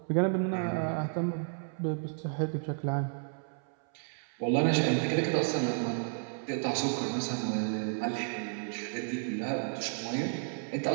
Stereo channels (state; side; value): silent; left; 56 dB below the other